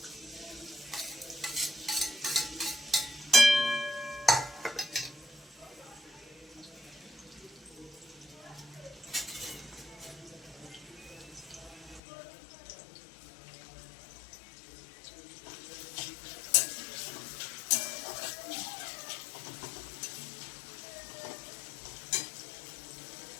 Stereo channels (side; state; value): right; drops out; at 12.0 s